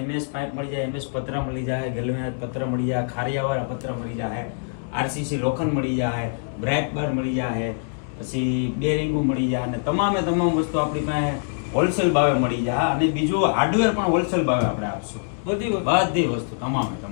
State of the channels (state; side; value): silent; right; digital silence